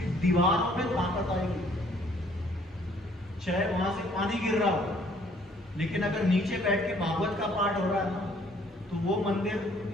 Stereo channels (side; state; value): both; normal; correlation 0.61